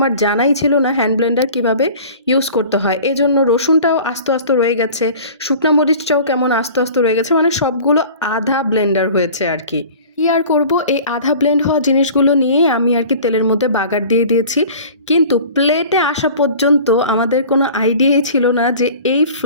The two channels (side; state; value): both; inverted; correlation -0.43